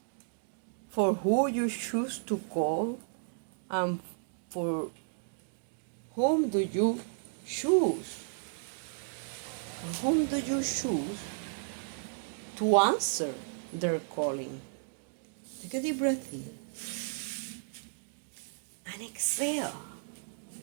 for who you choose to call and for whom do you choose? Whom do you choose to answer their calling? Take a deep breath in and exhale.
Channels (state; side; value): silent; left; digital silence